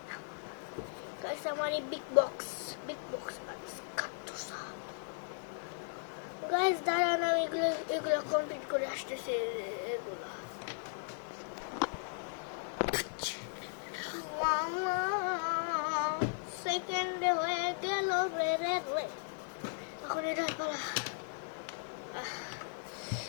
Guys আমার এই বিগ বক্স গাইস দাঁড়ান, আমি এগুলো কমপ্লিট করে আসতেছি। এগুলো সেকেন্ডে হয়ে গেল রে রে রে। এখন এটা পালা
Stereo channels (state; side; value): silent; right; digital silence